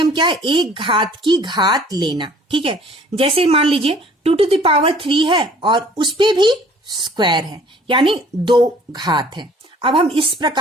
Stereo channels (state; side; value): normal; both; correlation 0.53